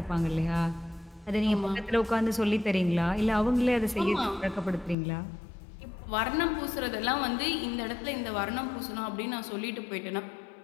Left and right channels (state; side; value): drops out; right; at 5.0 s